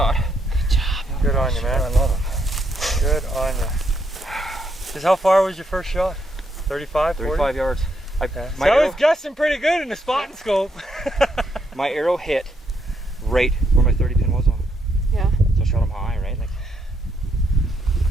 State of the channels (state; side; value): normal; both; correlation 0.76